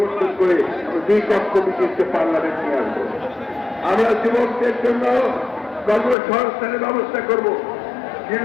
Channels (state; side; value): drops out; right; at 6.2 s